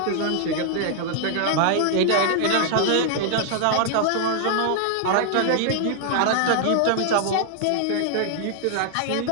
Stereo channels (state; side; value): different; both; correlation 0.00